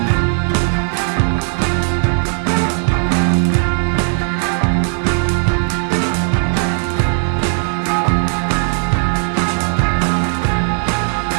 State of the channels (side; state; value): left; silent; 58 dB below the other